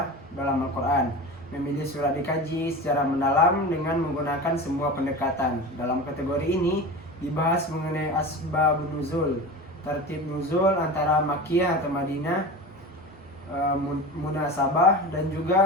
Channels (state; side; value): normal; both; correlation 0.30